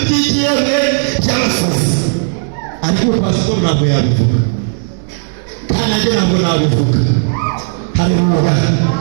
by'abasazi ariko pastor ntabwo yabivuga kandi nanjye ntabwo nabivuga haleluya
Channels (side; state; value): left; silent; digital silence